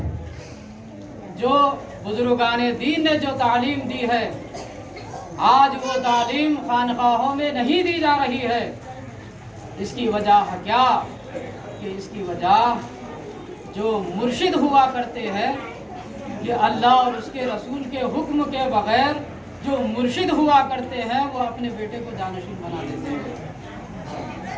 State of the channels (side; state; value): both; identical; correlation 1.00